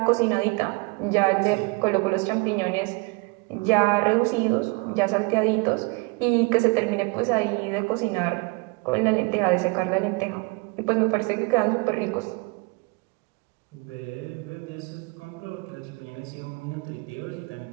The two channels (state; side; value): quieter; left; 28.7 dB